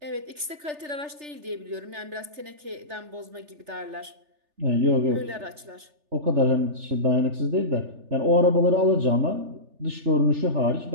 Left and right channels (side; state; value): left; late; 3.3 ms